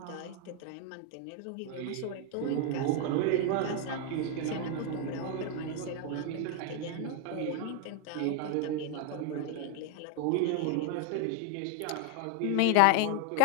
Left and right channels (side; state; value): both; different; correlation 0.01